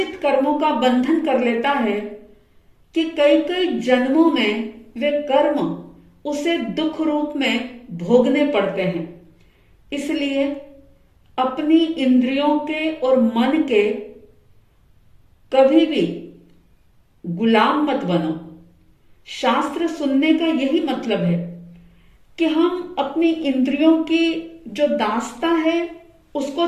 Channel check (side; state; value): both; identical; correlation 1.00